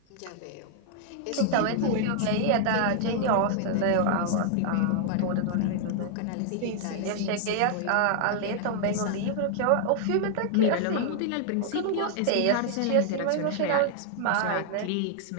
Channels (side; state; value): both; different; correlation 0.00